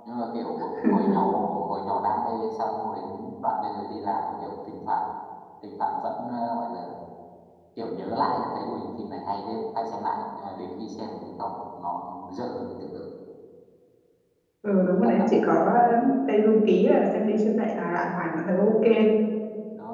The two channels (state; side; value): identical; both; correlation 1.00